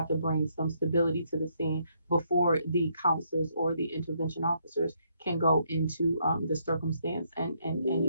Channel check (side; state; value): both; inverted; correlation -0.73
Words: to bring some stability to the scene before the counselors or the intervention officers can go into the circumstance and